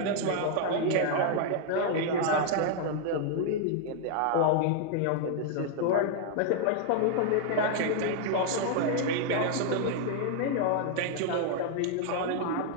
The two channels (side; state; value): both; different; correlation 0.00